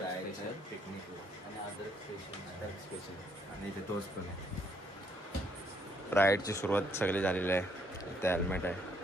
पिकनिक आणि अदरक स्पेशल आणि इथे तोच पण आहे. राईडची सुरुवात सगळी झालेली आहे. इथे हेल्मेट आहे,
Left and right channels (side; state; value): both; normal; correlation 0.70